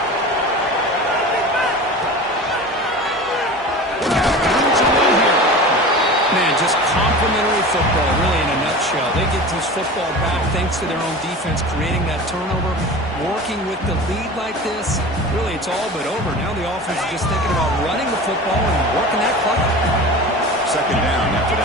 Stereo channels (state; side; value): normal; both; correlation 0.34